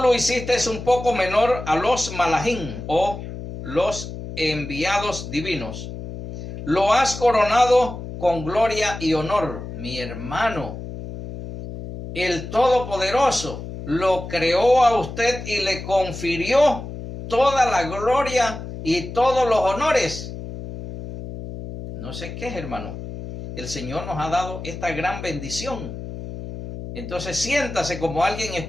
hiciste es un poco menor a los malajim o los enviados divinos. Lo has coronado con gloria y honor, mi hermano. El Todopoderoso lo creó a usted y le confirió toda la gloria y todos los honores. No sé qué es, hermano. El Señor nos ha dado esta gran bendición. Entonces siéntase como alguien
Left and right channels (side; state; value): left; noise; hum, 9 dB below the sound